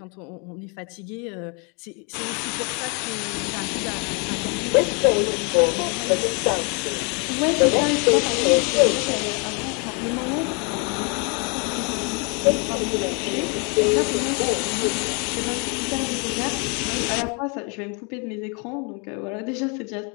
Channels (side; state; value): right; quieter; 34.3 dB